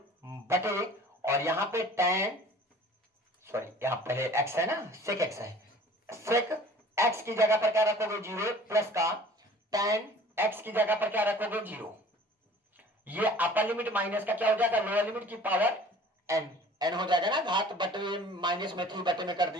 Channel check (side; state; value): both; normal; correlation 0.48